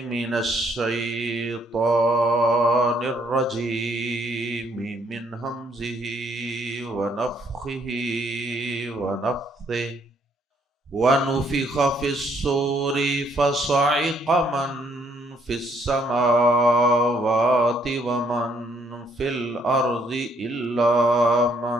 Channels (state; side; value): normal; both; correlation 0.68